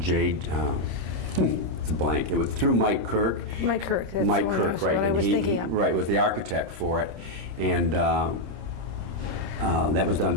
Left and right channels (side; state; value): left; late; 26 ms